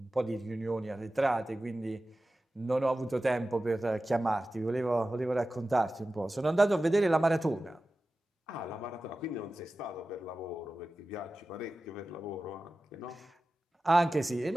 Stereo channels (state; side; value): normal; both; correlation 0.95